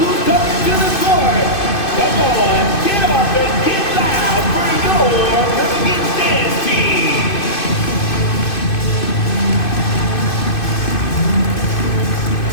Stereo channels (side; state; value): right; late; 2.5 ms